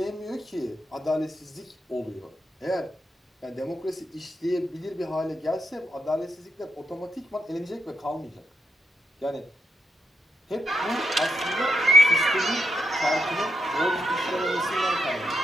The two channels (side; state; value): both; normal; correlation 0.81